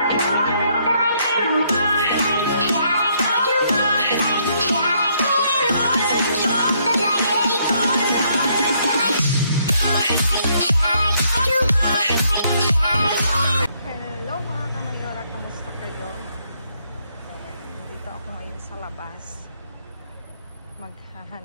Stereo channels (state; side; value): inverted; both; correlation -0.71